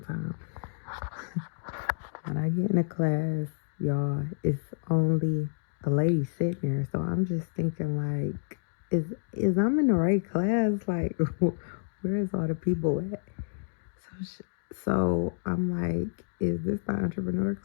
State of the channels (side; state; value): right; silent; digital silence